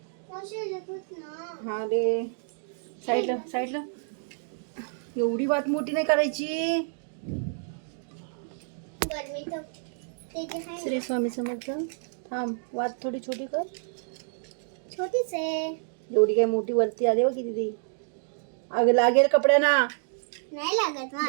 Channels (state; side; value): silent; left; digital silence